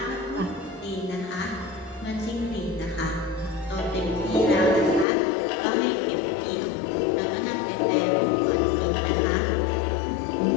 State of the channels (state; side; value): drops out; right; at 5.1 s